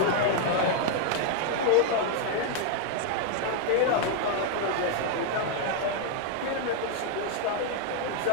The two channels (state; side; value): different; both; correlation 0.00